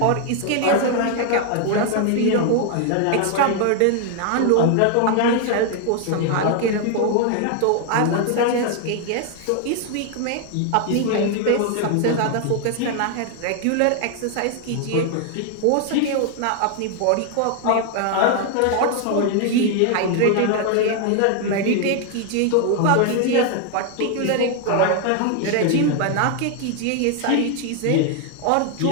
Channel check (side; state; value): both; different; correlation 0.00